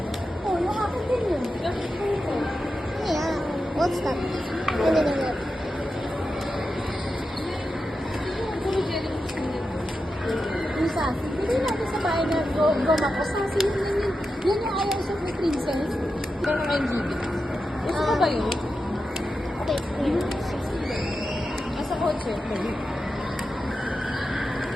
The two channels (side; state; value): both; normal; correlation 0.90